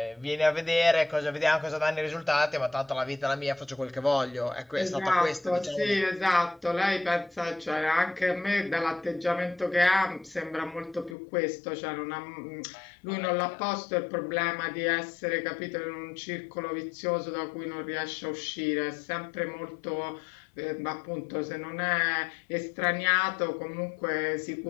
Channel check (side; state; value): right; drops out; at 11.2 s